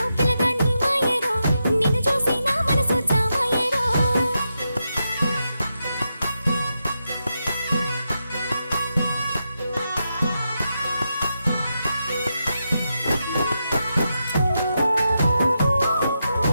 పిల్లగా నీ మాయేరో నిన్ను చూసి నా మనసు జామాయేరో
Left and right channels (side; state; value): both; inverted; correlation -0.86